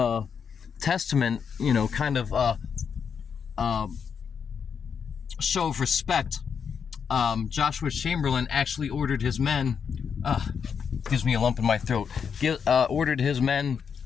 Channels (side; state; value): right; quieter; 6.7 dB